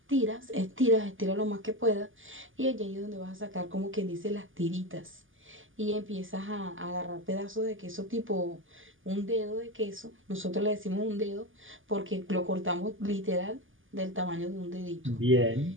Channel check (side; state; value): left; late; 0.58 ms